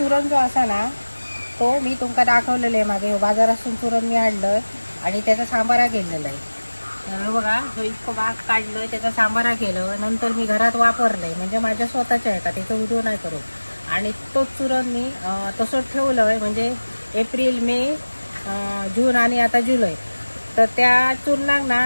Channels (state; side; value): inverted; both; correlation -1.00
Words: जो असा ना तो मी तुमका दाखवलेलं आहे मागे. हो बाजारातून चुरण मी आणलं आणि त्याचा सांबारा केलेला आहे. तर बघा तो इतकं बाग काढलं, त्याचा सांबारा केलं, नंतर मी घरात वापरलंय. म्हणजे माझ्या स्वतःच्या आहे का त्याचा व्हिडिओ नाही करू. आणि तोच चुरण मी तसंच ठेवलं आहे. म्हणजे एप्रिल मे जून आणि आता जुलै, तर त्या चूरणाक